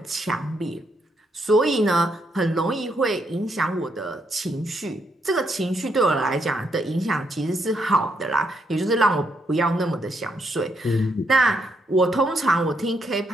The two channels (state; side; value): normal; both; correlation 0.76